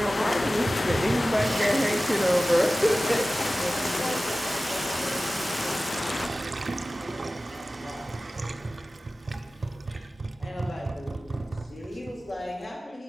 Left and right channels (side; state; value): both; normal; correlation 0.96